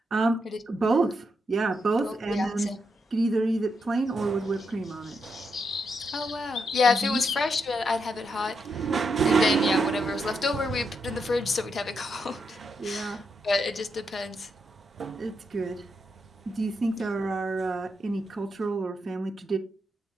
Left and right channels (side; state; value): both; normal; correlation 0.82